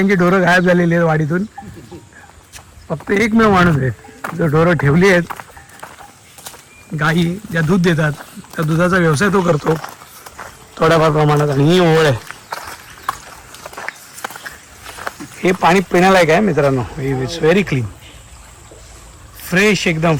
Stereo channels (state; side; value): identical; both; correlation 1.00